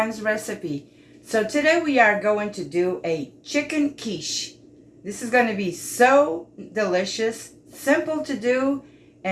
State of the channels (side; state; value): both; identical; correlation 1.00